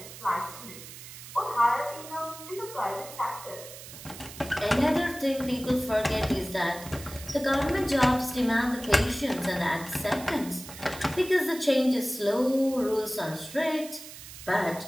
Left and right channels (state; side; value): noise; right; hiss, 14 dB below the sound